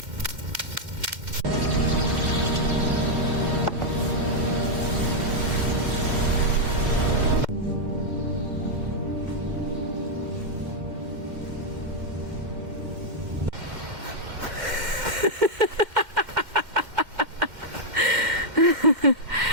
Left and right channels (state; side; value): late; left; 2.1 ms